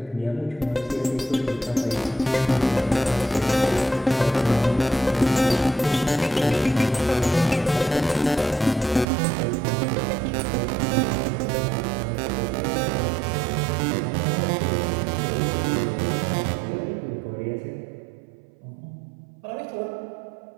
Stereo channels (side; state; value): left; drops out; at 9.1 s